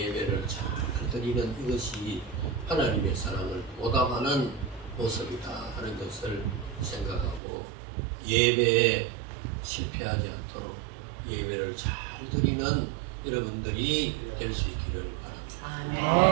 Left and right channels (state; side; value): drops out; left; at 7.4 s